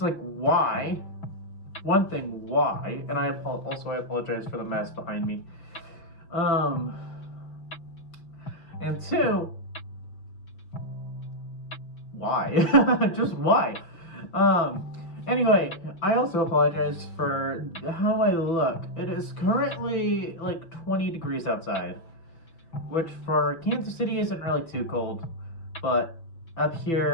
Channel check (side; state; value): right; late; 6.1 ms